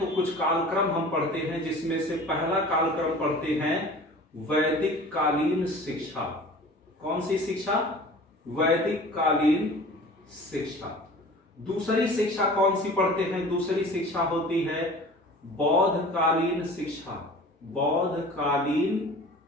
कुछ कालक्रम हम पढ़ते हैं, जिसमें से पहला कालक्रम पढ़ते हैं वैदिक कालीन शिक्षा। कौन सी शिक्षा? वैदिक कालीन शिक्षा। दूसरी शिक्षा कौन सी पढ़ते हैं? दूसरी शिक्षा होती है बौद्ध कालीन शिक्षा, बौद्ध कालीन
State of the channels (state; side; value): normal; both; correlation 0.42